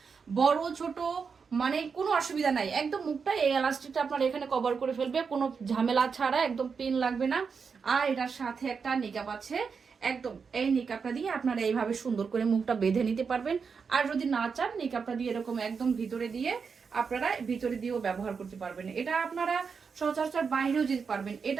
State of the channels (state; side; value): quieter; left; 5.7 dB